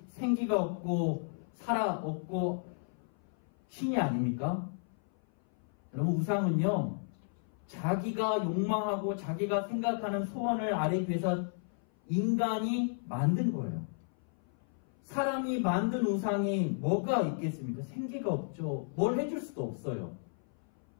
생기가 없고 살아 없고 신이 아닙니까? 여러분, 우상은요, 자기가 욕망하고 자기가 생각하는 소원을 아뢰기 위해서 인간이 만든 거예요. 사람이 만든 우상이 뭐가 있겠습니까? 생기가 없죠. 뭘 해줄 수도 없어요.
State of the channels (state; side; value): silent; right; 55 dB below the other